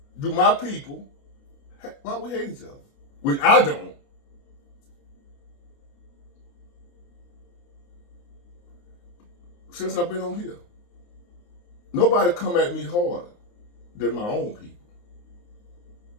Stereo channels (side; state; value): right; late; 29 ms